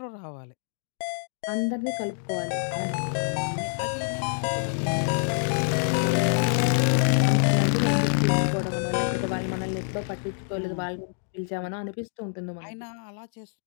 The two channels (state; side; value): silent; right; digital silence